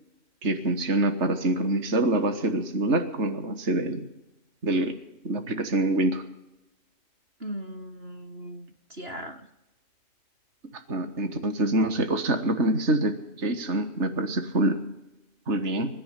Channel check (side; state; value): left; late; 3.3 ms